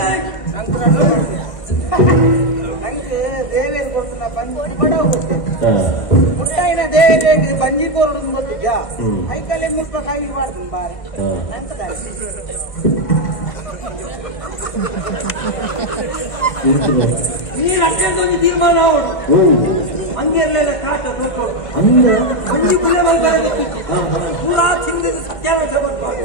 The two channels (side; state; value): right; late; 1.5 ms